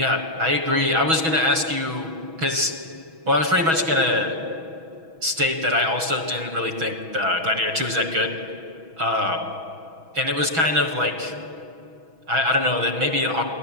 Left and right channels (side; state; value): left; late; 6.2 ms